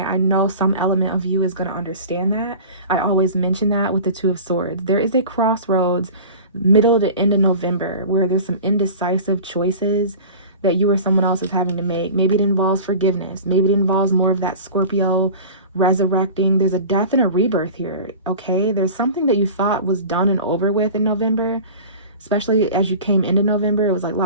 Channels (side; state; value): both; inverted; correlation -0.37